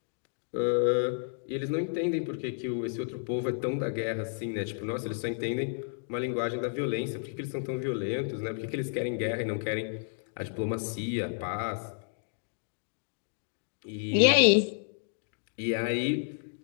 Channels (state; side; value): silent; right; digital silence